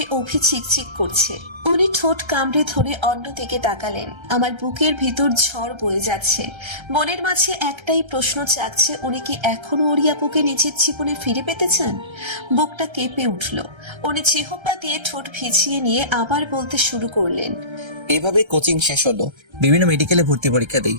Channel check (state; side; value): late; left; 1.3 ms